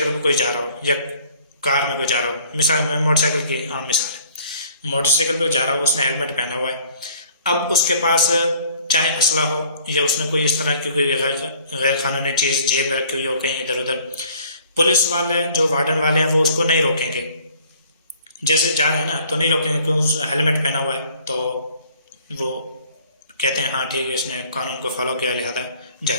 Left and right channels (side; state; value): both; inverted; correlation -0.55